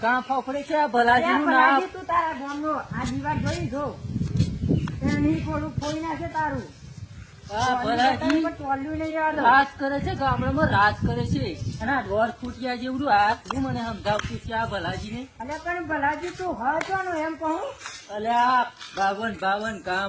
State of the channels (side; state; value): both; identical; correlation 1.00